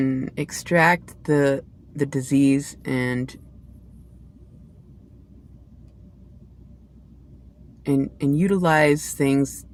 extract the disease and utilize things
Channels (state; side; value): identical; both; correlation 1.00